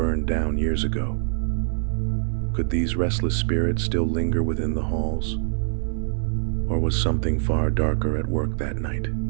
down years ago. Could these restless spirits still linger within the halls? Or was something far darker at work that night?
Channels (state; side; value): silent; left; 59 dB below the other